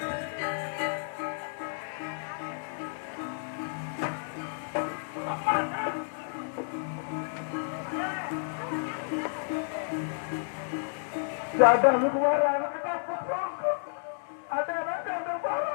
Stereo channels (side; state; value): right; silent; digital silence